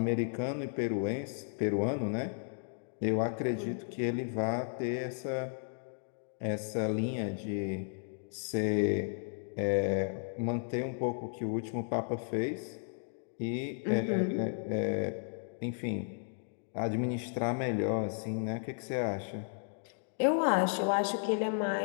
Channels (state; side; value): silent; right; digital silence